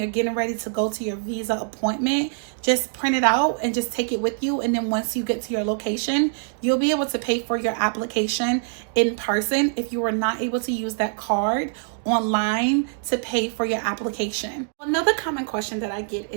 getting ready to go to your visa appointment, just print it out and just take it with you. And then once you get to your location, you'll be able to pay for your application in person if you were not able to use that card online to pay for your application. Another common question that I get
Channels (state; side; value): silent; left; digital silence